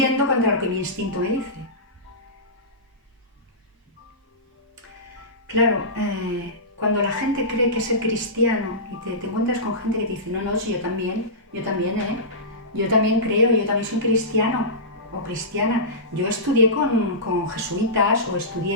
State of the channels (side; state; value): both; normal; correlation -0.18